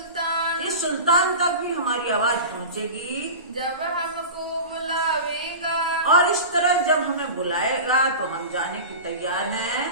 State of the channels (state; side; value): inverted; both; correlation -0.31